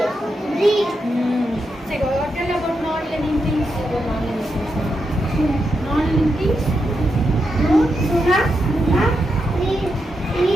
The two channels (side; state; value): both; normal; correlation 0.85